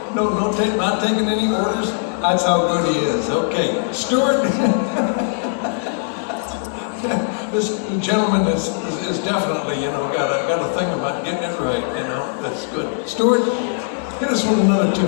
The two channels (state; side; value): silent; right; digital silence